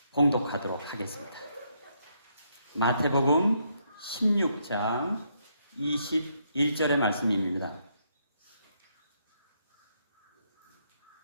봉독하도록 하겠습니다. 마태복음 16장 21절의 말씀입니다.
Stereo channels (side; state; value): both; inverted; correlation -0.75